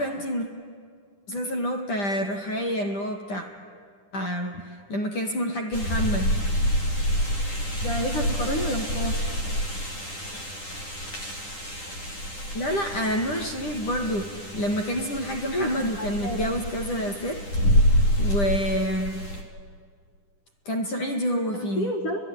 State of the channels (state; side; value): late; right; 10 ms